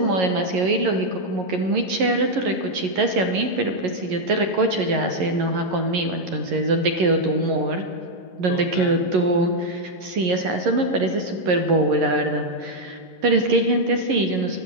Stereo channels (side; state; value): left; late; 11 ms